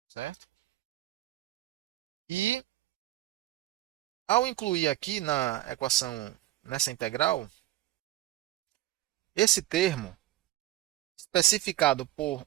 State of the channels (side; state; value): left; quieter; 15.5 dB